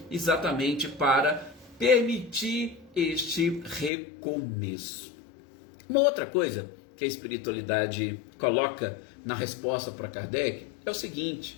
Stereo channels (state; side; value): drops out; right; at 3.9 s